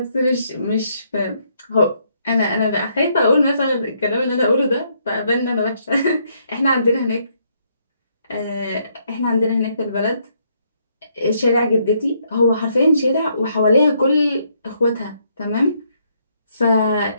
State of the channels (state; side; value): inverted; both; correlation -0.73